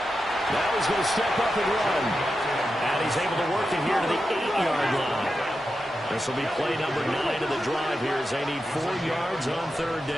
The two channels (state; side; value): normal; both; correlation 0.89